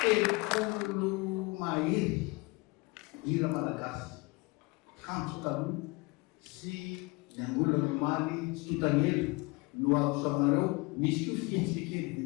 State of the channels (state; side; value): quieter; right; 25.6 dB